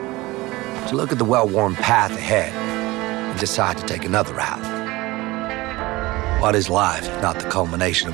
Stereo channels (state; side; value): quieter; left; 20.5 dB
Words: To look at the well-worn path ahead and decide to take another route. What is life if not the culmination